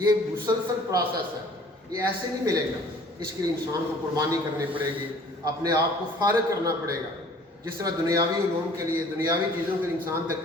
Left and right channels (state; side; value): normal; both; correlation 0.52